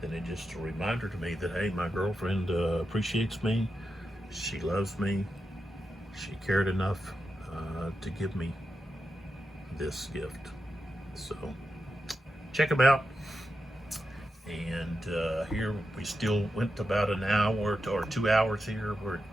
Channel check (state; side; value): normal; both; correlation 0.88